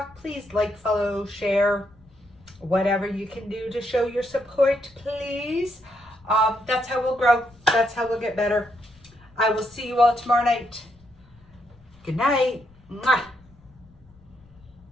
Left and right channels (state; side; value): noise; left; rumble, 27 dB below the sound